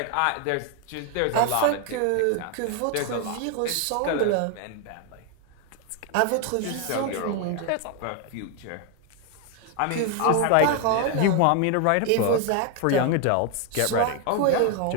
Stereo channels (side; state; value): both; different; correlation 0.01